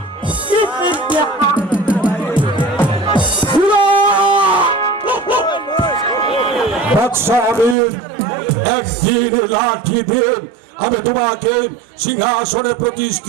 বাদশাহ আমির, একদিন লাঠি দিয়ে আমি তোমাকে সিংহাসনে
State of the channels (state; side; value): drops out; left; at 7.8 s